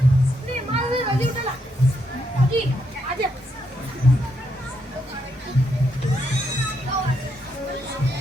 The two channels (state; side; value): normal; both; correlation 0.78